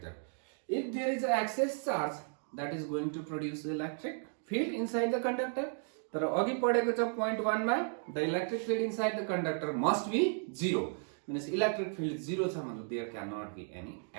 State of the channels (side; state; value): left; silent; 55 dB below the other